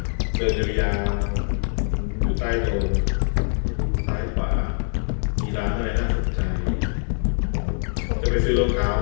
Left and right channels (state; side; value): silent; right; 63 dB below the other